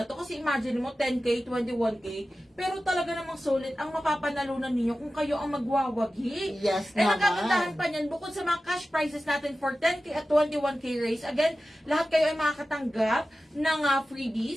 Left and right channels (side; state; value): both; normal; correlation 0.95